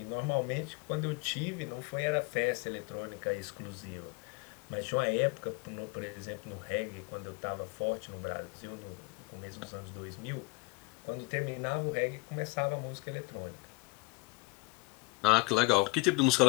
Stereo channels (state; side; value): quieter; right; 26.9 dB